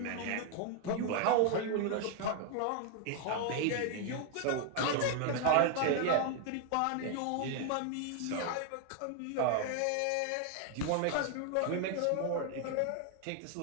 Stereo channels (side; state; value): both; different; correlation 0.00